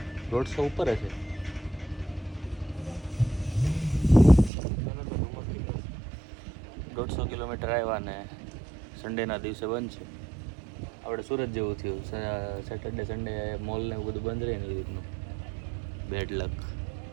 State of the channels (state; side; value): drops out; left; at 4.5 s